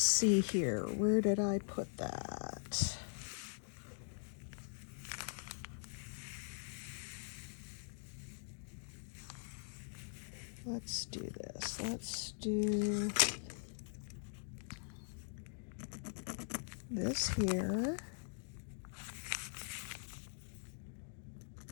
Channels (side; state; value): right; silent; digital silence